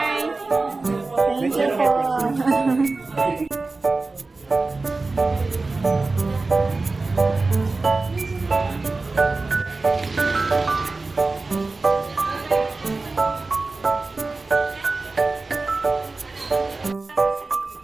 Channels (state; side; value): quieter; left; 3.6 dB